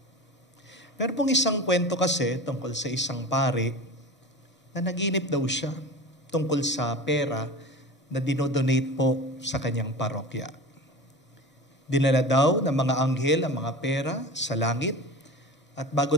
Meron pong isang kwento kasi tungkol sa isang pare na naginip daw siya tungkol sa pera na dinodonate po sa kanyang parokya. Dinala daw ng mga anghel ang mga pera sa langit at bago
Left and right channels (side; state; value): both; normal; correlation 0.33